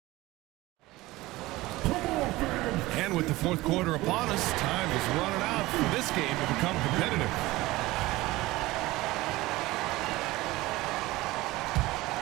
And with the fourth quarter upon us. Time is running out for this game to become competitive.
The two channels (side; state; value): left; quieter; 19.2 dB